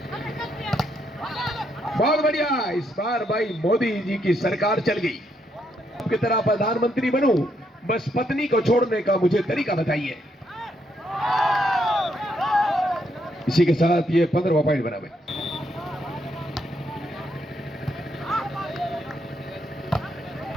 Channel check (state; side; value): normal; both; correlation 0.76